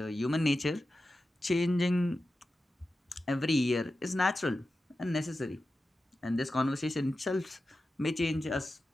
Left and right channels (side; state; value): both; normal; correlation 0.92